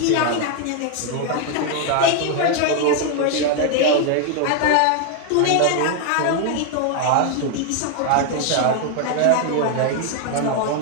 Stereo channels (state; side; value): different; both; correlation 0.01